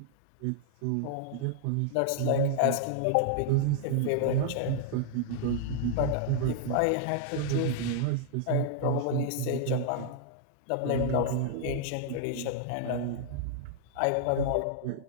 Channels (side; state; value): both; different; correlation -0.01